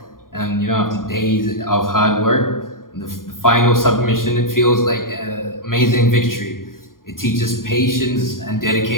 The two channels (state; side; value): late; right; 0.91 ms